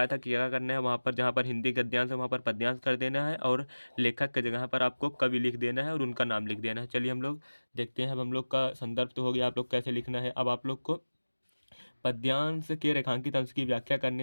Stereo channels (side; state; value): both; inverted; correlation -1.00